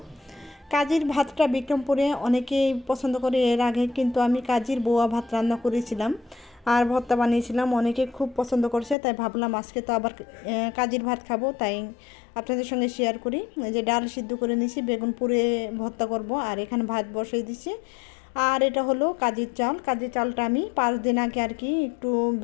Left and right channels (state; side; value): drops out; right; at 9.0 s